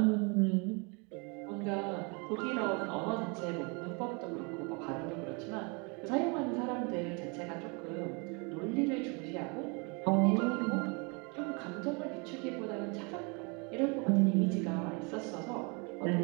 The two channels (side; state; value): left; quieter; 32.0 dB